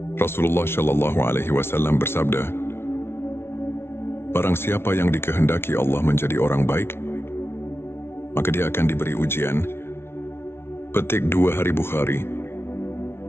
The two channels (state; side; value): late; right; 0.12 ms